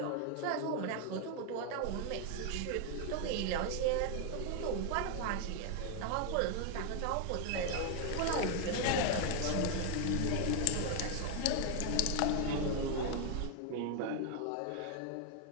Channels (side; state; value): both; different; correlation 0.00